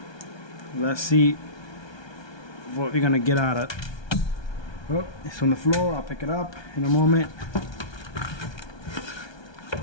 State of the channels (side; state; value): right; late; 1.2 ms